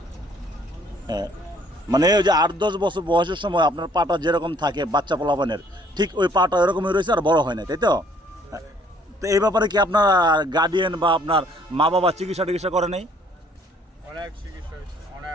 হ্যাঁ, মানে ওই যে 8-10 বছর বয়সের সময় আপনার পাটা যেরকম থাকে বাচ্চা পোলাপানের, ঠিক ওই পাটা এরকমই রয়েছে, আর বড় হয় না, তাই তো? তো এই ব্যাপারে কি আপনার গার্ডিয়ান বা আপনার মা বাবা চিকিৎসা করে নেই?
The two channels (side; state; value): both; normal; correlation 0.60